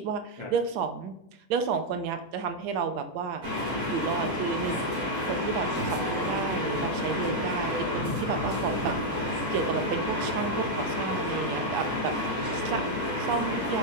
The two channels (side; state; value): left; late; 7.6 ms